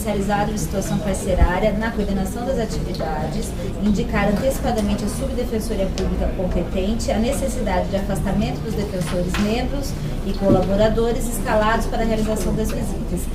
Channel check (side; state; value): both; identical; correlation 1.00